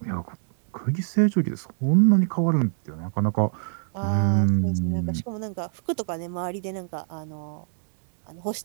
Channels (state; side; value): silent; left; digital silence